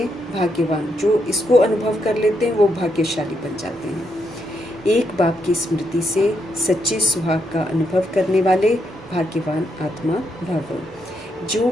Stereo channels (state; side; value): normal; both; correlation 0.79